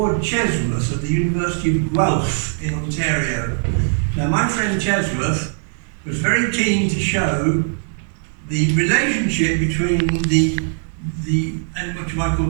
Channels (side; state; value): left; silent; digital silence